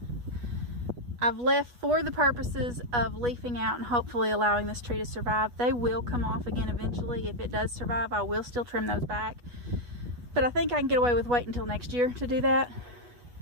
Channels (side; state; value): left; late; 8.2 ms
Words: I've left for the purposes of leafing out and hopefully allowing this tree to survive. They will come off again eventually. If it does survive, I will still trim those back. But I think I can get away with waiting until next year to do that.